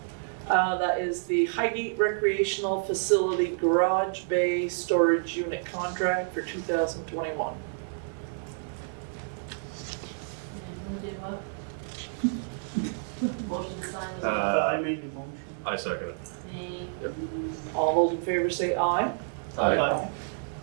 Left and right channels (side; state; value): left; silent; digital silence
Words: it. That is the Highgate Recreational Facility Garage Bay Storage Unit contract for 2021. And who did what? Motion to sign the. I made the motion. I second it. Thank Yep. you. All those in favor say aye. Aye.